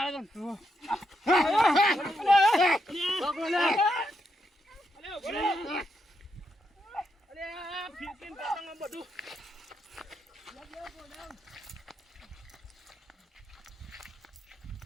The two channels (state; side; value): normal; both; correlation 0.81